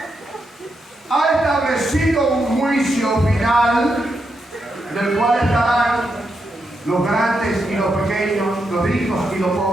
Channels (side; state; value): both; normal; correlation 0.83